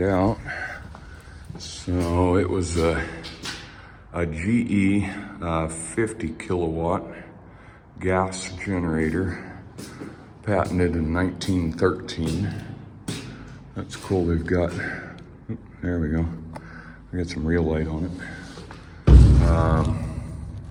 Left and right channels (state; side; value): identical; both; correlation 1.00